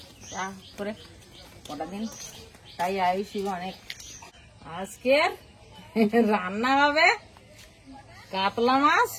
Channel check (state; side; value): identical; both; correlation 1.00